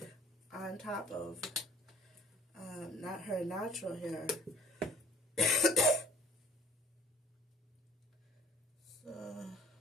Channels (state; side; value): normal; both; correlation 0.51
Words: on top of not her natural hair. So